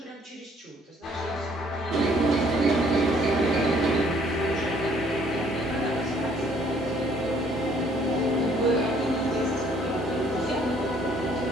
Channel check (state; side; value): normal; both; correlation 0.62